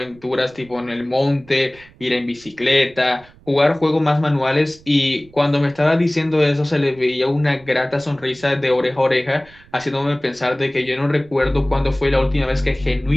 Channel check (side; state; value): right; noise; rumble, 26 dB below the sound